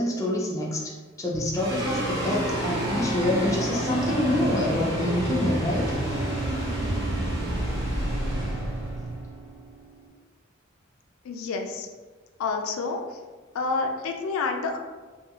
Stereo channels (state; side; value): normal; both; correlation 0.50